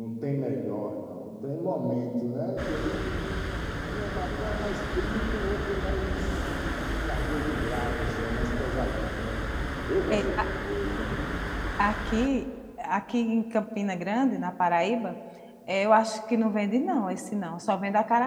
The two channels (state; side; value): identical; both; correlation 1.00